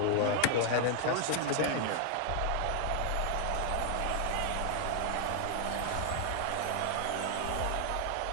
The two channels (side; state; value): both; different; correlation 0.00